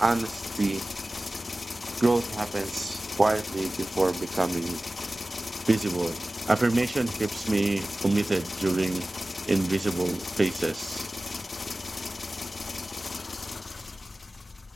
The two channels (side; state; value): both; normal; correlation 0.97